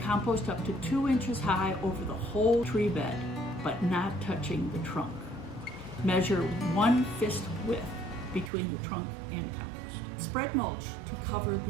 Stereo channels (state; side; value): drops out; left; at 8.5 s